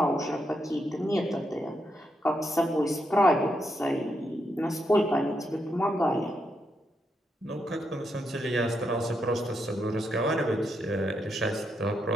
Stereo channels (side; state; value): both; normal; correlation 0.81